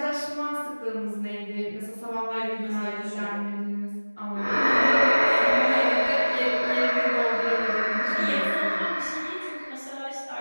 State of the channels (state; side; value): inverted; both; correlation -1.00